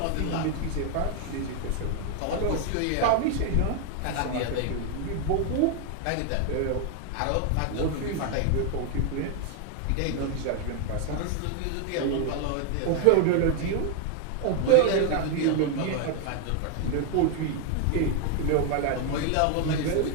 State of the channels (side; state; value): both; different; correlation 0.00